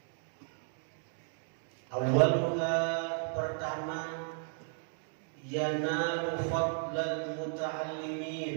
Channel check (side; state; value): left; silent; 55 dB below the other